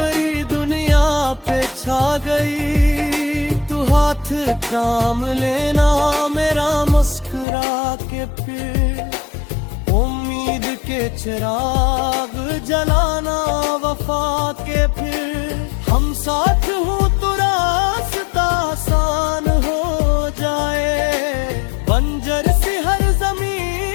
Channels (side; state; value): right; drops out; at 7.5 s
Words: दुनिया पे छा गई, तू हाथ थाम लेना मेरा मुस्कुरा के, फिर उम्मीद के चिराग जलाना वफा के, फिर हम साथ हूँ तो रास्ता आसान हो जाए, बंजर सी हर